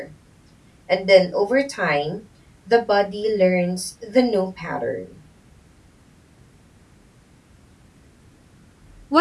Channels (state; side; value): identical; both; correlation 1.00